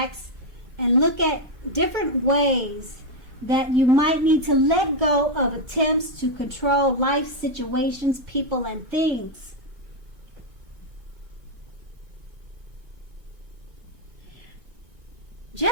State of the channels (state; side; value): late; left; 2.1 ms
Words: and look at different ways that you might need to let go of attempts to control life situations, people, and things.